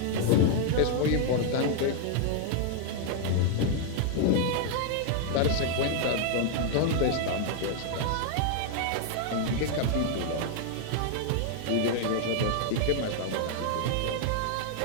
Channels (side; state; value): both; different; correlation 0.00